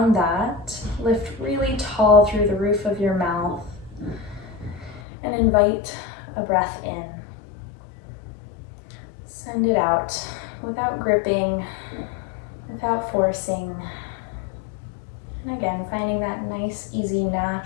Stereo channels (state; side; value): drops out; right; at 5.0 s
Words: that, lift really tall through the roof of your mouth and invite a breath in. Send it out without gripping, without forcing. And again, finding that nice, easy,